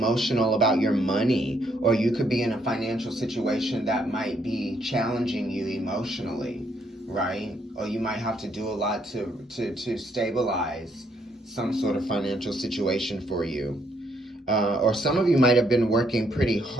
about your money, or you could be in a financial situation that might be challenging you emotionally, right? Or you might have to do a lot to stabilize some sort of financial situation for you. Or some of you might have been working pretty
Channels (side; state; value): both; normal; correlation 0.72